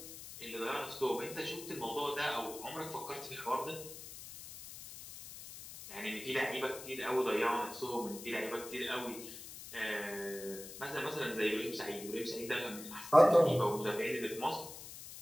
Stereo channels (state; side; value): noise; left; hiss, 12 dB below the sound